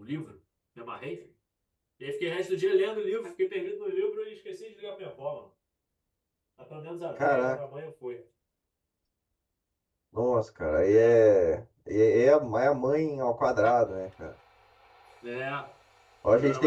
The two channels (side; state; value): both; identical; correlation 1.00